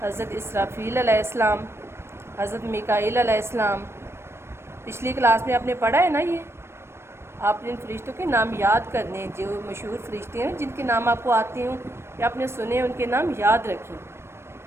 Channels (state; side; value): late; left; 0.12 ms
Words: حضرت اسرافیل علیہ السلام، حضرت میکائیل علیہ السلام. پچھلی کلاس میں آپ نے پڑھا ہے نا. یہ آپ نے ان فرشتوں کے نام یاد کرنے ہیں. جو مشہور فرشتے ہیں جن کے نام آپ کو آتے ہوں یا آپ نے سنے ان کے نام یاد رکھیں.